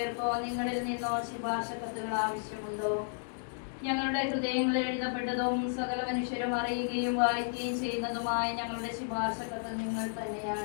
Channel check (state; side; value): silent; right; digital silence